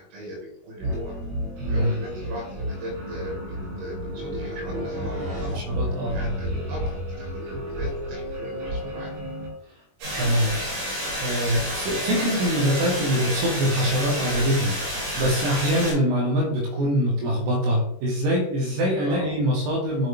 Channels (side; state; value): left; late; 21 ms